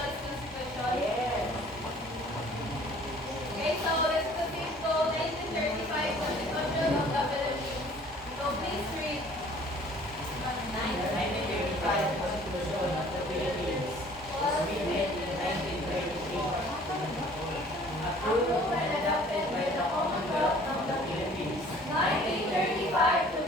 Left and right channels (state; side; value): normal; both; correlation 0.52